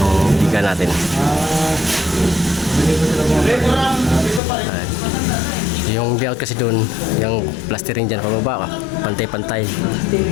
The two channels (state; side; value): drops out; right; at 4.4 s